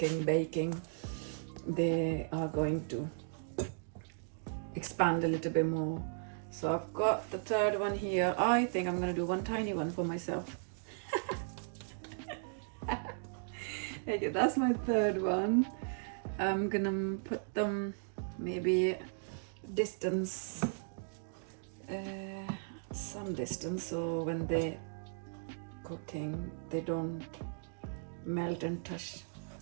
baking, they are going to expand a little bit more. So I've got the third one here. I think I'm gonna do one tiny one for myself. Okay, that's my third one. I'm gonna put them maybe distance, some distance, so when they're cooking they don't melt and touch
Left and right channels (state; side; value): silent; left; digital silence